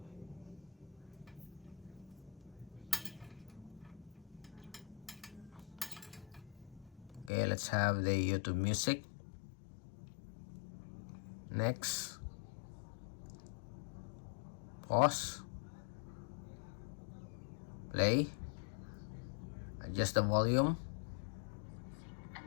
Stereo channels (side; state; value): right; drops out; at 7.3 s